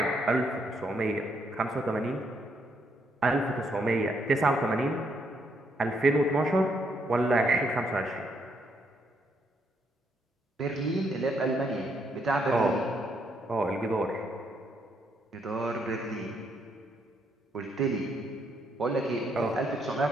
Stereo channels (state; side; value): normal; both; correlation 0.74